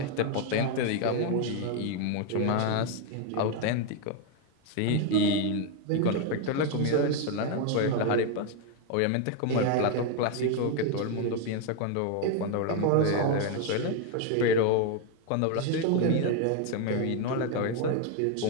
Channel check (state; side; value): different; both; correlation 0.01